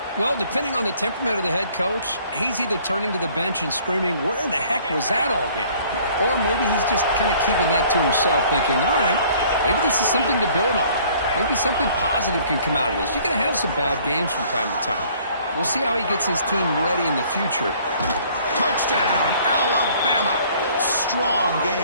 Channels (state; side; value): inverted; both; correlation -0.56